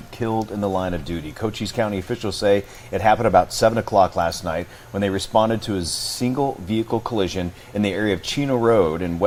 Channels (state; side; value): identical; both; correlation 1.00